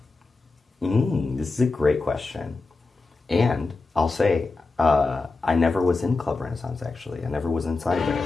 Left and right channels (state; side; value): quieter; right; 3.7 dB